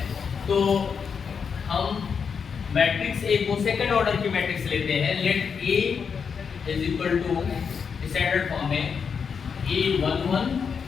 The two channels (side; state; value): right; quieter; 6.3 dB